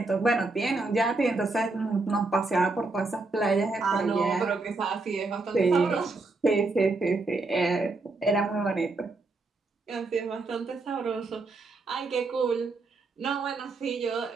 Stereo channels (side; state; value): left; quieter; 3.5 dB